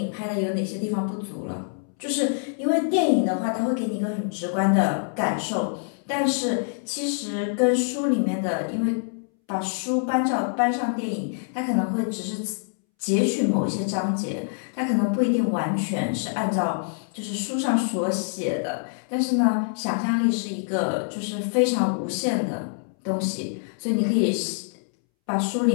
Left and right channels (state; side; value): silent; right; 61 dB below the other